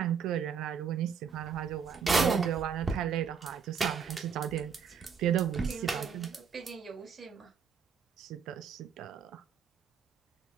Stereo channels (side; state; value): left; quieter; 6.5 dB